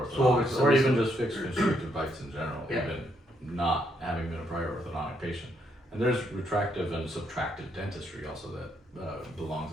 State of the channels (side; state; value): both; normal; correlation 0.75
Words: or even just fixed constrictive bites in general, Yeah. even not having been a prior orthodontic patient. And there's retractive and subtractive dentistry also that belongs